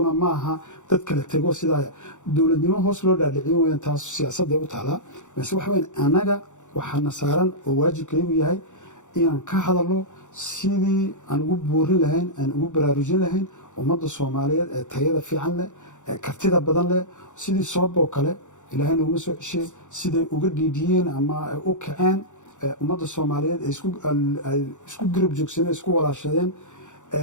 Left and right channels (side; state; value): right; late; 0.85 ms